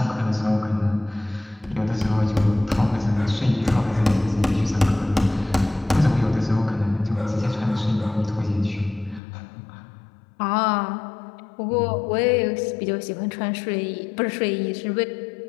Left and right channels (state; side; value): drops out; right; at 9.2 s